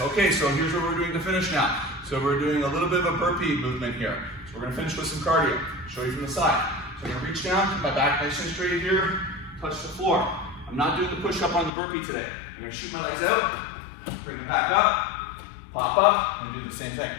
so here's what we're doing to finish now. So we're doing a little bit of a burpee movement here. So we're gonna finish with some cardio. Show you from the side. So I'm gonna reach down, keep my back nice and straight here, touch the floor. I'm not doing the push-up on the burpee today. I'm gonna shoot my legs out, bring them back up, pop up, and do the same thing.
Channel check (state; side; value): drops out; right; at 11.7 s